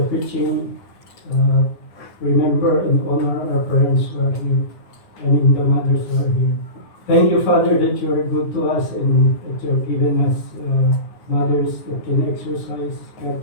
preaching, remember and honor our parents who are here. I mean, the mothers who are here. Thank you, Father, that you are good to us and that you have given us mothers that can exercise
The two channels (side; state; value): right; late; 9.7 ms